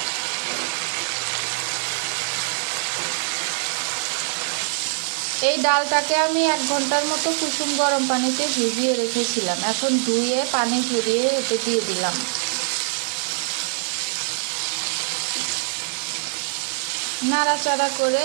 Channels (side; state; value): left; silent; 63 dB below the other